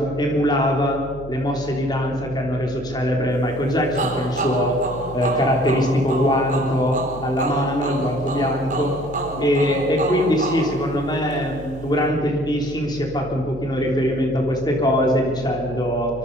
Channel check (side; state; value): right; noise; hum, 14 dB below the sound